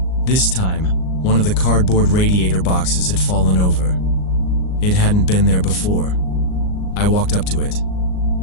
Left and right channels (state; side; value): late; right; 38 ms